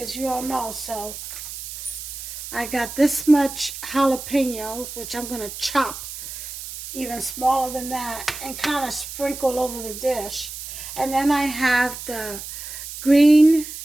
you all know. So I got this much jalapeno, which I'm going to chop even smaller than that and kind of sprinkle over the dish. And then I have the green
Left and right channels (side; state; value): right; noise; hiss, 10 dB below the sound